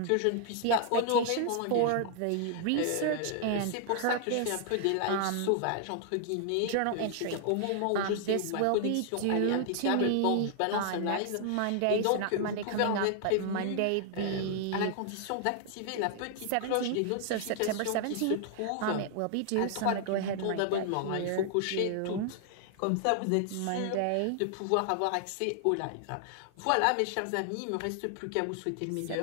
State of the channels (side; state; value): both; different; correlation 0.00